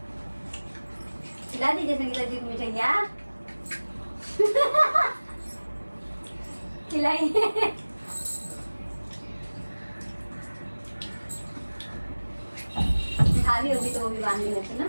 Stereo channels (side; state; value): both; inverted; correlation -1.00